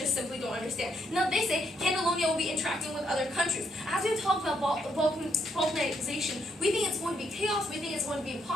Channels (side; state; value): both; normal; correlation 0.75